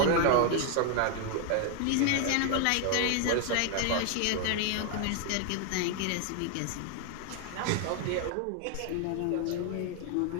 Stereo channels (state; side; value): different; both; correlation 0.00